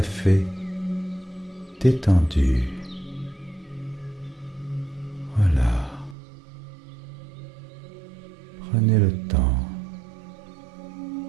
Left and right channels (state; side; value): drops out; left; at 6.2 s